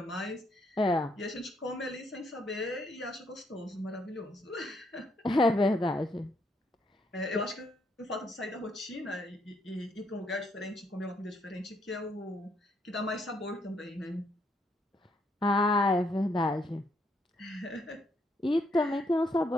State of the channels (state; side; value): normal; both; correlation 0.73